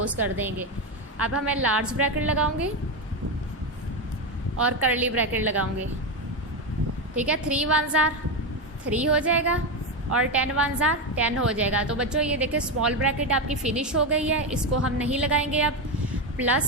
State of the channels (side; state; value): both; normal; correlation 0.11